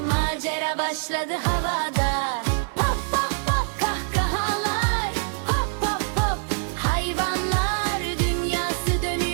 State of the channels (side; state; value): left; silent; digital silence